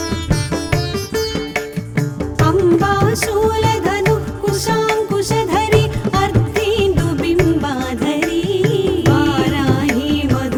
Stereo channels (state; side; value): identical; both; correlation 1.00